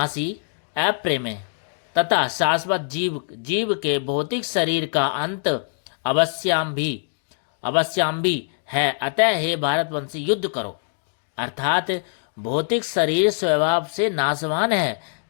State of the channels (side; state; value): right; silent; digital silence